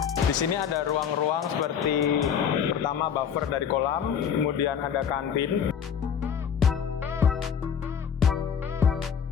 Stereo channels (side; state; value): right; quieter; 7.8 dB